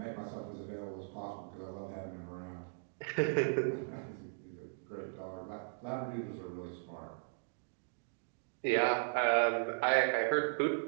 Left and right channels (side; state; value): left; silent; digital silence